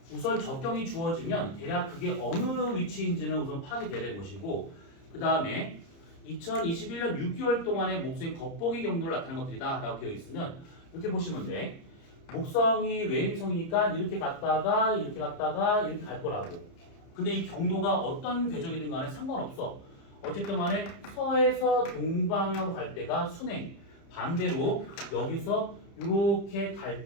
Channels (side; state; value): right; late; 30 ms